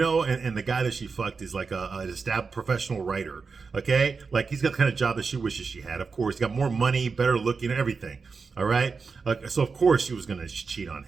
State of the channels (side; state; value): left; quieter; 4.9 dB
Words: the guy that she fucked is like an established professional writer. Okay, like he's got the kind of job that she wishes she had. Of course, he got more money, better looking, everything. All right, so of course she was gonna cheat on